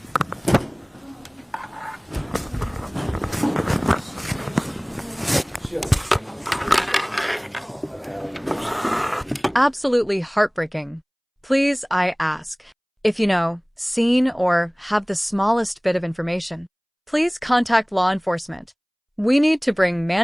Absolutely heartbreaking. Please, I ask. If you know, seen, or have the smallest bit of information, please contact law enforcement. We need to bring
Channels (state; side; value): identical; both; correlation 1.00